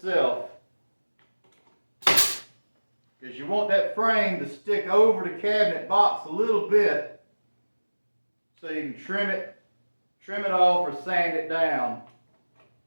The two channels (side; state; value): both; inverted; correlation -1.00